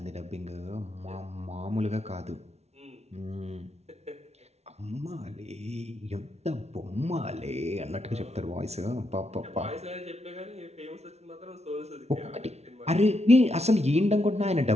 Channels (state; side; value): late; left; 0.31 ms